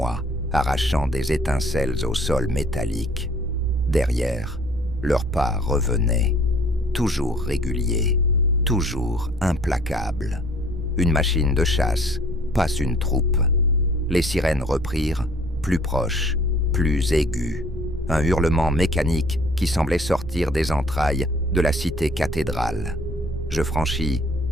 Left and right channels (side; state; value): right; noise; rumble, 9 dB below the sound